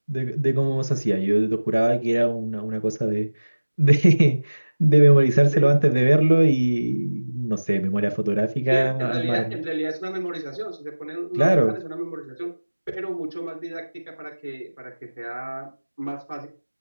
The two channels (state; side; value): inverted; both; correlation -1.00